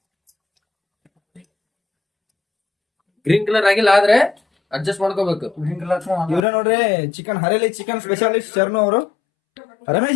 ಗ್ರೀನ್ ಕಲರ್ ಆಗಿಲ್ಲ ಆದ್ರೆ ಅಡ್ಜಸ್ಟ್ ಮಾಡ್ಕೋಬೇಕು. ಇವ್ರೆ ನೋಡ್ರಿ ಚಿಕನ್ ಹರೇಲಿ ಚಿಕನ್ ಸ್ಪೆಷಲಿಸ್ಟ್ ಶರ್ನು ಅವರು. ರಮೇಶ್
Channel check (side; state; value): right; drops out; at 6.4 s